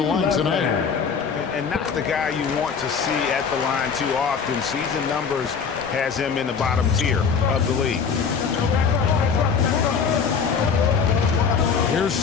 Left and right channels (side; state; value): right; quieter; 6.1 dB